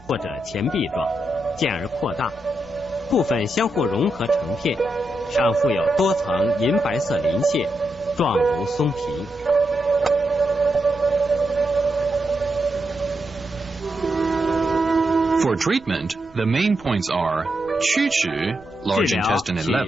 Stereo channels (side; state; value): right; noise; rumble, 25 dB below the sound